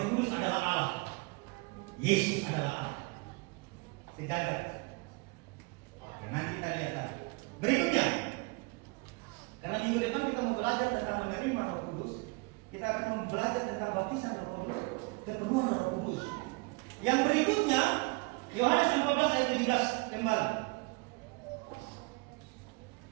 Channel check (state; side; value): quieter; left; 28.4 dB